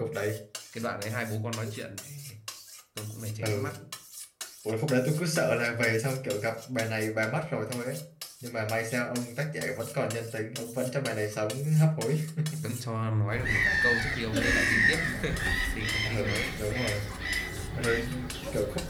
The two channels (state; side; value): identical; both; correlation 1.00